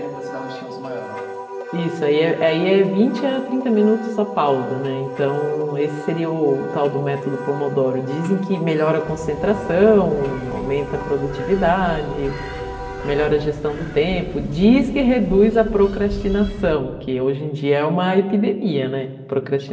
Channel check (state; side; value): identical; both; correlation 1.00